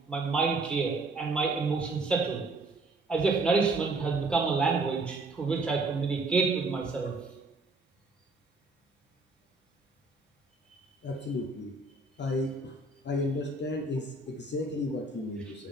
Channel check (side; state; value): left; quieter; 3.2 dB